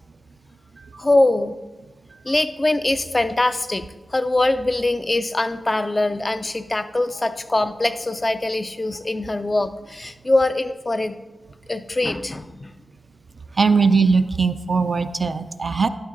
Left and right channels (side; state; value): both; normal; correlation 0.92